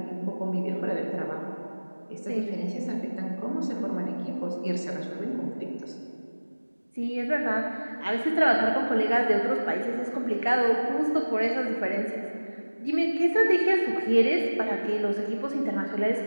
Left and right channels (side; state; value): both; inverted; correlation -1.00